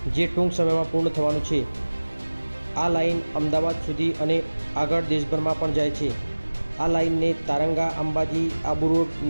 જે ટૂંક સમયમાં પૂર્ણ થવાનું છે। આ લાઇન અમદાવાદ સુધી અને આગળ દેશભરમાં પણ જાય છે। આ લાઇનને તારંગા અંબાજી આબુ રોડ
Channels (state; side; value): inverted; both; correlation -1.00